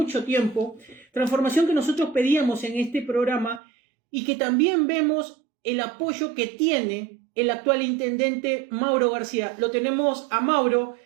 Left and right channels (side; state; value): left; drops out; at 3.6 s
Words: tiempo, transformación que nosotros pedíamos en este programa y que también vemos el apoyo que tiene el actual intendente Mauro García. Lo tenemos a Mauro.